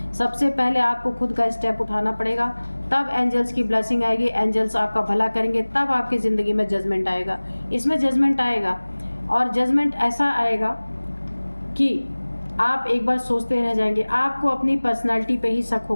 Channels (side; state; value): both; inverted; correlation -1.00